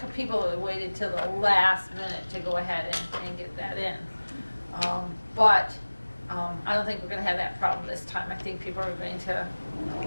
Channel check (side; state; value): both; inverted; correlation -1.00